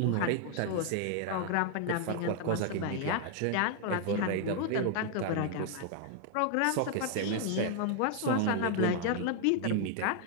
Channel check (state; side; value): different; both; correlation 0.00